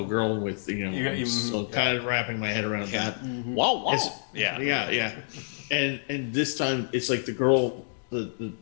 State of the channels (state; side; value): silent; right; digital silence